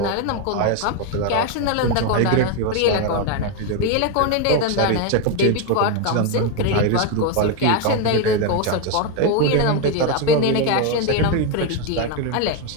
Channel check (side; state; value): both; different; correlation 0.02